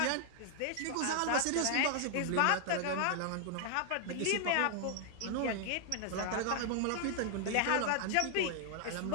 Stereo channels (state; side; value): different; both; correlation 0.00